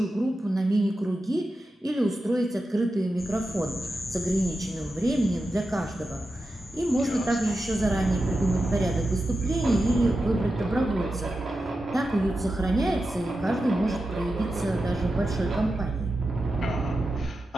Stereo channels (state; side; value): normal; both; correlation 0.91